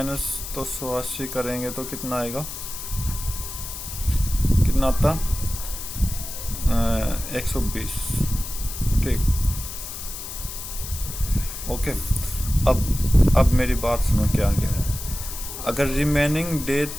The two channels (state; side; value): noise; left; hiss, 9 dB below the sound